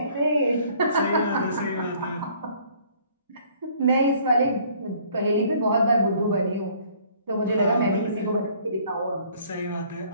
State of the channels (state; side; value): inverted; both; correlation -0.58